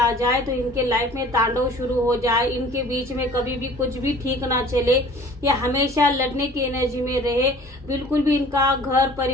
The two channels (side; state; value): both; normal; correlation 0.48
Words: जाए तो इनके लाइफ में तांडव शुरू हो जाए, इनके बीच में कभी भी कुछ भी ठीक ना चले, या हमेशा लड़ने की एनर्जी में रहे, बिल्कुल भी इनका घर